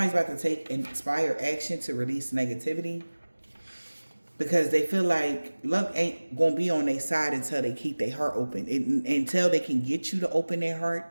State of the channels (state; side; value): inverted; both; correlation -1.00